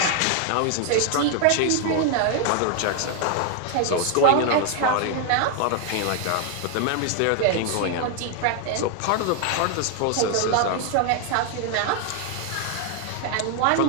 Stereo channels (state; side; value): different; both; correlation 0.00